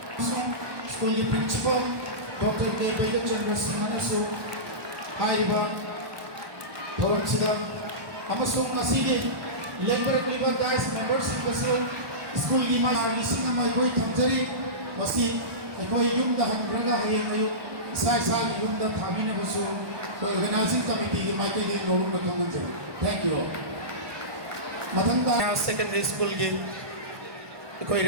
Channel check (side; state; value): left; late; 1.2 ms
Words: school principal, Dr. K. Chandra Singh, Haiba, Thoram Amasung Labor guys, members of the school Lising and my boy Tamjari, Masi, a boy Yum the Hambraga, Sai Yum the Tabina Basu, organizing committee, Michael Norum the Commander. Thank you all. Matanga secondary school game.